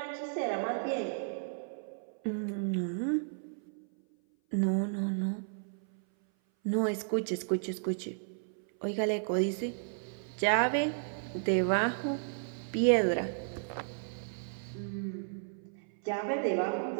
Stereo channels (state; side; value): silent; left; 55 dB below the other